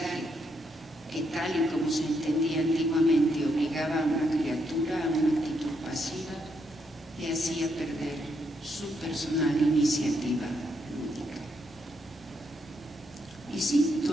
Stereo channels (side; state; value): both; normal; correlation 0.77